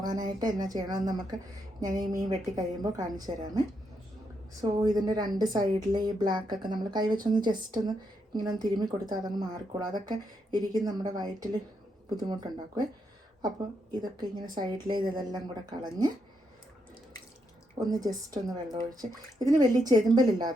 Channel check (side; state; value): both; normal; correlation 0.80